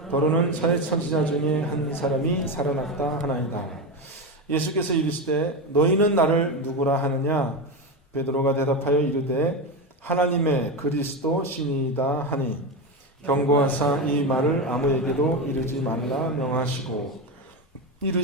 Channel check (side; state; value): both; normal; correlation 0.16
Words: 더러는 선지자 중에 한 사람이 살아났다 하나이다. 예수께서 이르시되 너희는 나를 누구라 하느냐? 베드로가 대답하여 이르되 하나님의 그리스도 신이다 하니 경고하사 이 말을 아무에게도 이르지 말라 명하시고